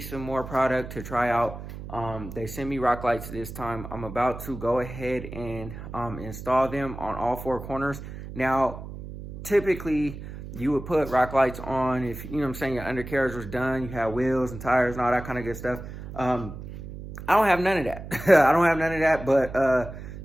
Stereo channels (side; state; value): right; noise; hum, 11 dB below the sound